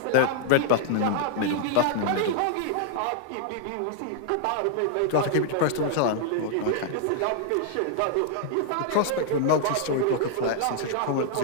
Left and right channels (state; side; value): different; both; correlation 0.00